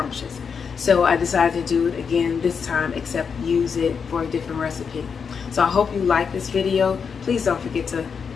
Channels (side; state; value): right; quieter; 6.2 dB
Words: So I decided to do it again this time, except use it for a different recipe. So I hope you like this video. Please don't forget to